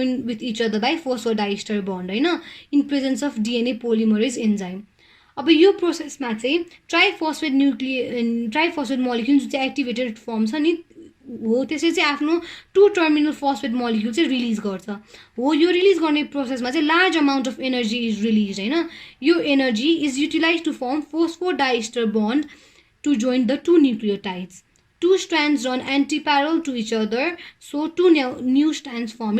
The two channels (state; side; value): identical; both; correlation 1.00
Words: with each other by phosphodiester bond होइन in presence of DNA polymerase enzyme अब यो प्रोसेसमा चाहिँ ट्राइफोस्फेट मोलिक्युल जुन चाहिँ एक्टिभेटेड फर्म छ नि हो त्यसले चाहिँ आफ्नो 2 टर्मिनल फोस्फेट मोलिक्युल चाहिँ रिलिज गर्छ हो यो रिलिज गर्ने प्रोसेसमा चाहिँ large amount of energy is release होइन यो energy is utilize to form phosphodiester bond to join the 2 nucleotides 2 strands run anti-parallel to each other, so 2 new strands form